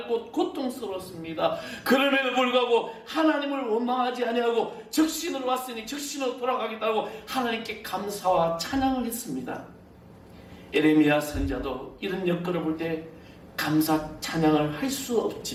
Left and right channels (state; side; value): identical; both; correlation 1.00